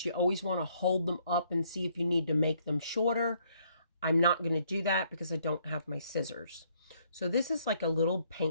You always want to hold them up and see if you need to make them shorter. I'm not going to do that because I don't have my scissors. So this is like a little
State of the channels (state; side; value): inverted; both; correlation -0.68